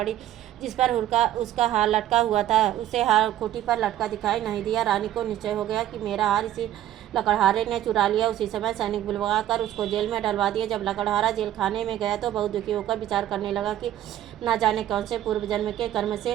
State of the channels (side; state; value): left; quieter; 12.5 dB